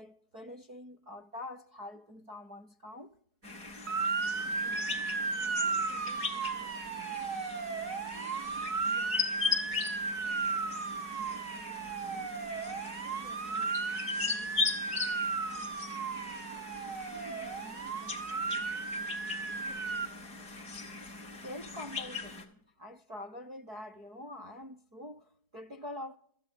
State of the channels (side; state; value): left; late; 4.8 ms